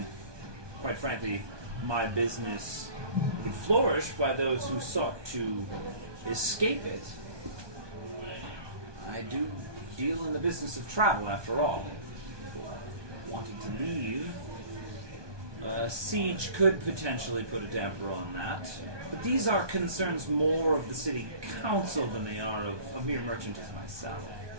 quite frankly, my business would flourish by those who sought to escape it. I do deal in the business of travel, after all. Wanting to leave, a siege could potentially put a damper on that. But these are concerns more of the city council than they are of a mere merchant as myself.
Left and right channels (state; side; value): late; left; 1.2 ms